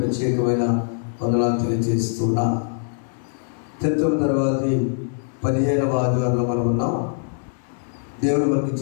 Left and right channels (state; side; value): silent; right; digital silence